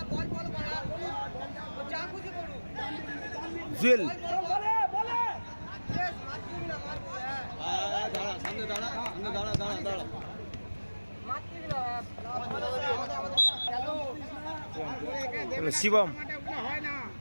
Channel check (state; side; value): inverted; both; correlation -1.00